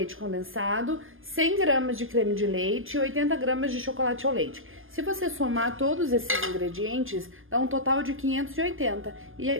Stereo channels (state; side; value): late; left; 0.59 ms